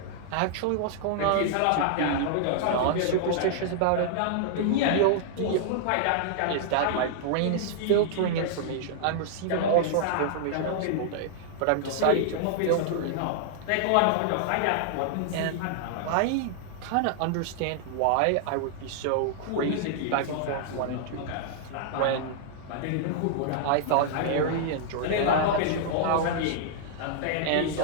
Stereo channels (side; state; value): both; different; correlation -0.01